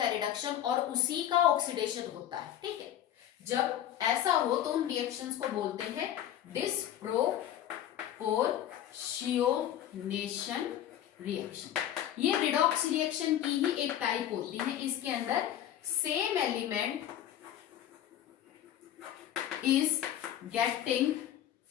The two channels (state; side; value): quieter; right; 11.4 dB